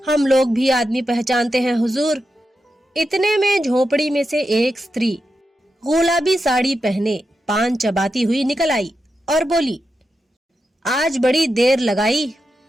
लोग भी आदमी पहचानते हैं हुजूर। इतने में झोपड़ी में से एक स्त्री गुलाबी साड़ी पहने पान चबाती हुई निकल आई और बोली, आज बड़ी देर लगाई।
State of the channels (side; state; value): both; normal; correlation 0.88